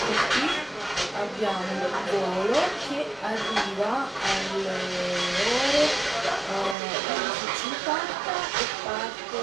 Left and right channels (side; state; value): left; drops out; at 6.8 s